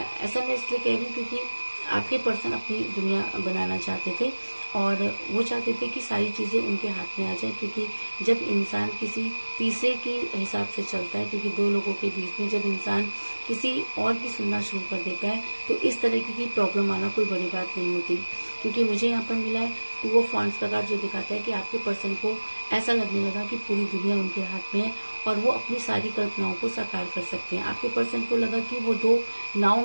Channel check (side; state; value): both; inverted; correlation -1.00